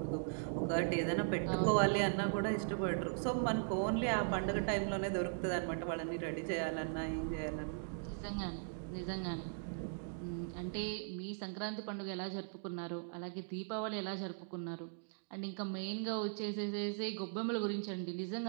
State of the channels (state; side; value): silent; left; digital silence